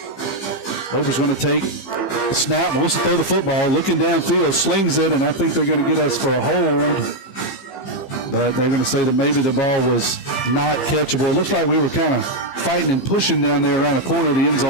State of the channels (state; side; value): late; right; 15 ms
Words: Loper's going to take the snap, wants to throw the football, looking downfield, slings it, and I think they're going to get us for a hold. But they're going to say that maybe the ball was not catchable. It looks like we were kind of fighting and pushing down there around the corner. The end